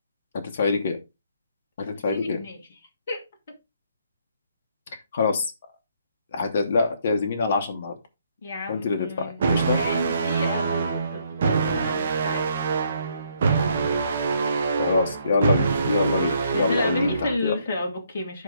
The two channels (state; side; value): inverted; both; correlation -0.69